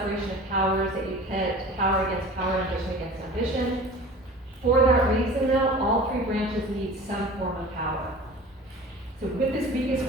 of powers, that you pit power against power, ambition against ambition. For that reason, though, all three branches need some form of power. So with this weakest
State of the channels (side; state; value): both; normal; correlation 0.40